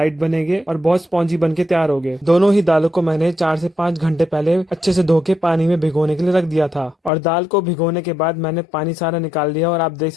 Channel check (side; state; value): right; drops out; at 7.1 s